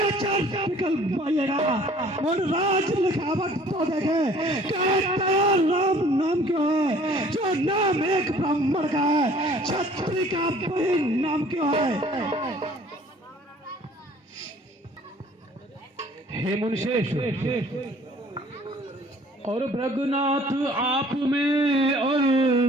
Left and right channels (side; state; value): both; normal; correlation 0.54